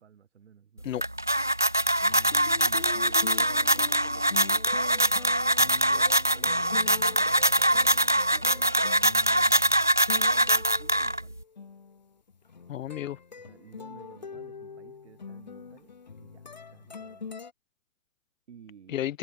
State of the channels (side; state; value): both; inverted; correlation -0.67